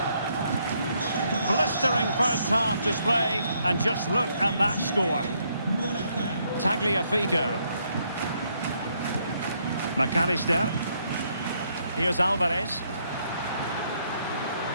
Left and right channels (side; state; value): both; inverted; correlation -0.73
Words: Blistering first half display, and just look at that score. Tagliafico. McAllister. Here's Alvarez.